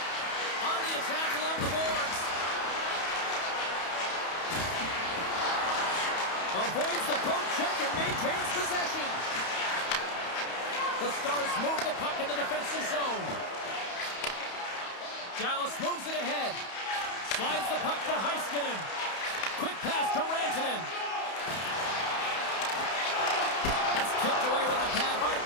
On the attack along the boards. Avoids the poke check and maintains possession. The Stars move the puck in the defensive zone. Dallas moves it ahead. Slides the puck to Heiskanen. Quick pass to Rantanen. That's kicked away with a pad by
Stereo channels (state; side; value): late; right; 31 ms